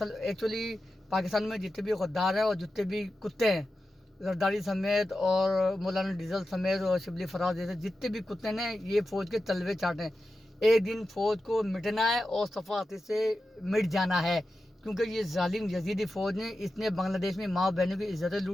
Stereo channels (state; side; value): normal; both; correlation 0.92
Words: ایکچولی پاکستان میں جتنے بھی غدار ہیں اور جتنے بھی کتے ہیں، زرداری سمیت اور مولانا ڈیزل سمیت اور شبلی فراز جیسے جتنے بھی کتے ہیں، یہ فوج کے تلوے چاٹیں۔ ایک دن فوج کو مٹنا ہے اور صفاقتی سے مٹ جانا ہے، کیونکہ یہ ظالم یزیدی فوج نے اس نے بنگلہ دیش میں ماں بہنوں کی عزتیں